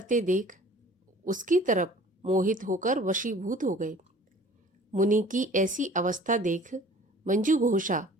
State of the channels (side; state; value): both; normal; correlation 0.49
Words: देख उसकी तरफ मोहित होकर वशीभूत हो गए। मुनि की ऐसी अवस्था देख मंजुघोषा